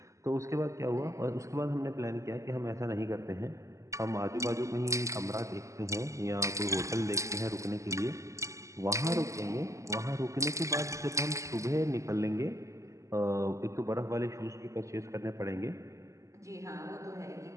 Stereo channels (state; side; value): late; left; 0.15 ms